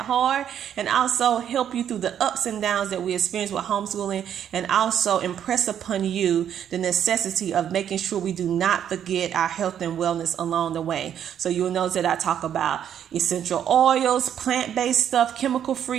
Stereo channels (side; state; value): left; quieter; 9.5 dB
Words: hard, and also help you through the ups and downs that we experience with homeschooling, and also impress upon you the necessity of making sure we do not forget our health and wellness along the way. So you'll notice that I talk about essential oils, plant-based stuff,